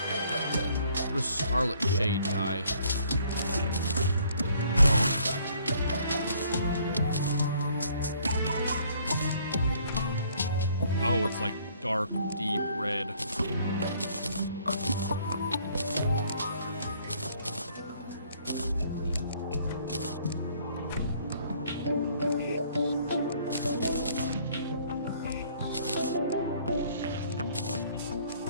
What is Scarlet Shade dye? Oh, it's like dark, deep red.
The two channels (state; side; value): inverted; both; correlation -0.62